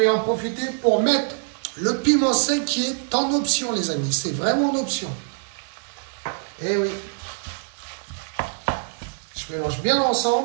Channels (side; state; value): left; silent; digital silence